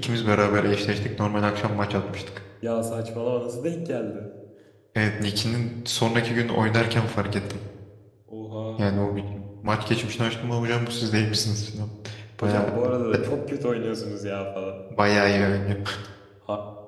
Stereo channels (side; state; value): both; identical; correlation 1.00